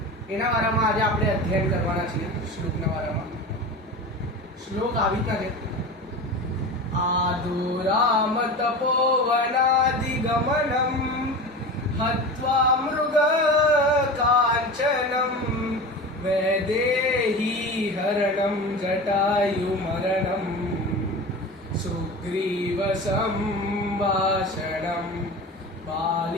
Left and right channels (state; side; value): normal; both; correlation 0.30